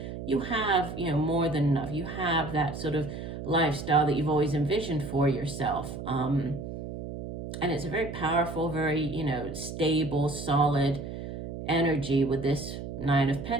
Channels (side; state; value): right; noise; hum, 8 dB below the sound